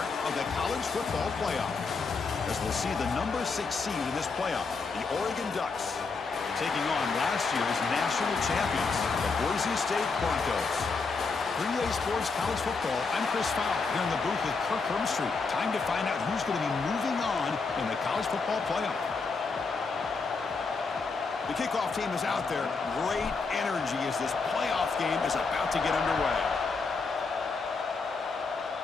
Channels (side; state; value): right; quieter; 4.5 dB